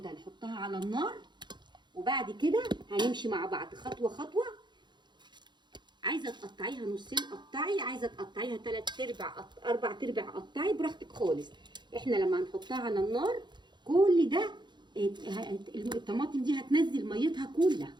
نحطها على النار، وبعد كده هنمشي مع بعض خطوه خطوه. عايزه تقطعيها نصين قطعي، عايزه تقطعيها 3/4 4/4 قطعي، براحتك خالص. احنا لما هنحطها على النار كل ده الطماطم دي هتنزل ميتها كلها.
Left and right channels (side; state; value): left; late; 0.22 ms